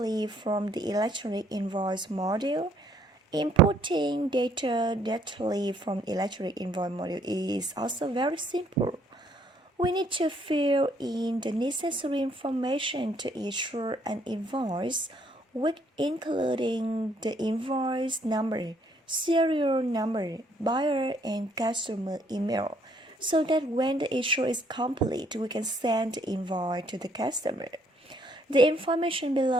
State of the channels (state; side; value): normal; both; correlation 0.66